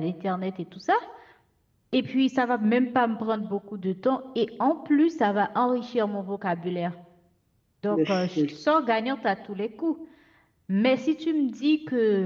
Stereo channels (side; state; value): both; identical; correlation 1.00